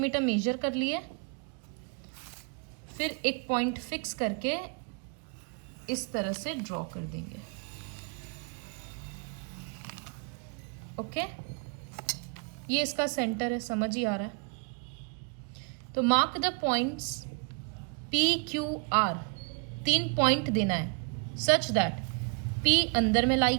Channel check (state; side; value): quieter; left; 34.5 dB